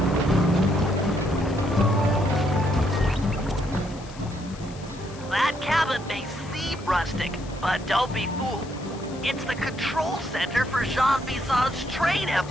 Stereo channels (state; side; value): noise; left; hiss, 20 dB below the sound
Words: Rustic, but don't be fooled. It's the control center for Jean Bisson's train